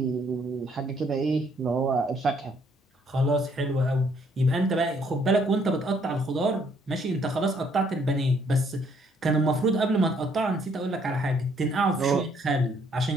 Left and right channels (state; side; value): normal; both; correlation 0.67